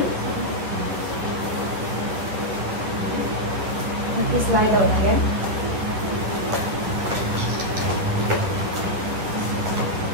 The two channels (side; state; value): left; late; 11 ms